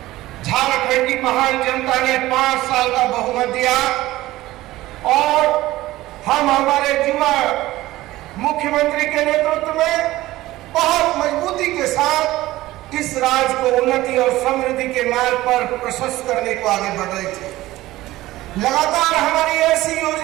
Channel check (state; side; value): quieter; left; 16.9 dB